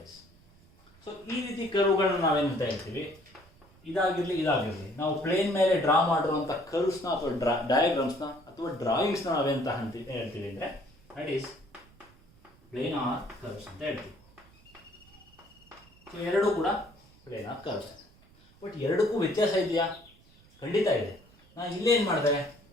So ಈ ರೀತಿ ಕರ್ವ್ಗಳನ್ನ ನಾವೇನಂತ ಹೇಳ್ತೀವಿ? ಇದಾಗಿರಲಿ ನಾವು ಪ್ಲೇನ್ ಮೇಲೆ ಡ್ರಾ ಮಾಡಿರುವಂಥ ಕರ್ವ್ಸ್ನ ಅಥವಾ ಡಯಾಗ್ರಾಮ್ಸ್ನ ಅಥವಾ ಡ್ರಾಯಿಂಗ್ಸ್ನ ನಾವೇಂತ ಹೇಳ್ತೀವಿ ಅಂದರೆ ದಟ್ ಈಸ್ ಪ್ಲೇನಾರ್ ಕರ್ವ್ಸ್ ಅಂತ ಹೇಳ್ತೀವಿ. ಸೊ ಎರಡೂ ಕೂಡ ಪ್ಲೇನಾರ್ ಕರ್ವ್ಸ್. ಬಟ್ ಎರಡಕ್ಕೂ ವ್ಯತ್ಯಾಸ ಇದೆಯಾ? ಖಂಡಿತ ಇದೆ. ನಾನು ಇಲ್ಲೇ ಏನು ಮಾಡಿದೆ,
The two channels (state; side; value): noise; right; rumble, 27 dB below the sound